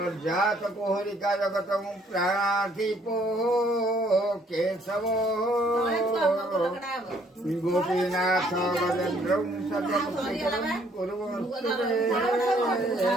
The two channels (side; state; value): both; normal; correlation 0.64